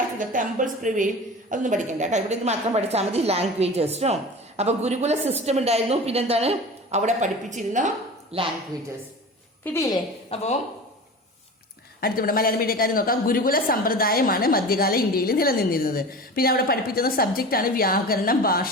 to the temples prevail. അതൊന്നും പഠിക്കണ്ട കേട്ടോ. ഇവിടെ ഇത് മാത്രം പഠിച്ചാൽ മതി. ലാംഗ്വേജസ് കേട്ടോ. അപ്പൊ ഗുരുകുല സിസ്റ്റം ഉണ്ടായിരുന്നു. പിന്നെന്താണ് അവിടെ പഠിപ്പിച്ചിരുന്ന ലാംഗ്വേജസ്. കിട്ടിയില്ലേ? അപ്പോ അടുത്തിവിടെ മലയാളം മീഡിയക്കാർ നോക്കാം. ഗുരുകുല സമ്പ്രദായമാണ് മധ്യകാല ഇന്ത്യയിൽ നിലനിന്നിരുന്നത്. പിന്നെ അവിടെ പഠിപ്പിക്കുന്ന സബ്ജക്റ്റാണ് വ്യാകരണം,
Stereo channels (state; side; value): normal; both; correlation 0.34